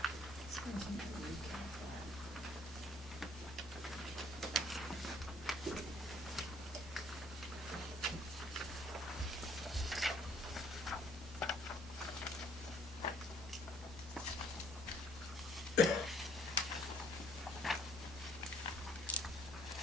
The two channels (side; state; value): both; normal; correlation 0.62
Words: This one's in the recap file.